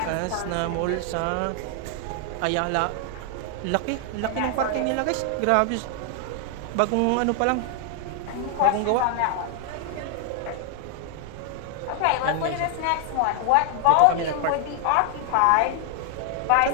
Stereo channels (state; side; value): different; both; correlation 0.00